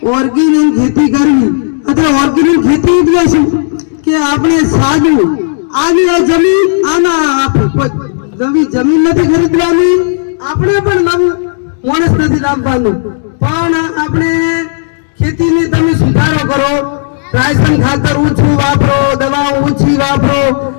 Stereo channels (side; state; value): right; silent; digital silence